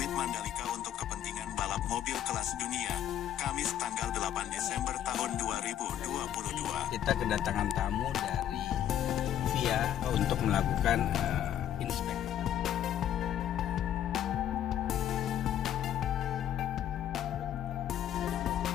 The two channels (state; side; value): quieter; right; 11.0 dB